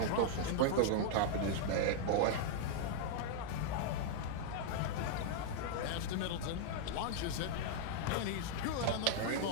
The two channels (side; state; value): both; different; correlation -0.01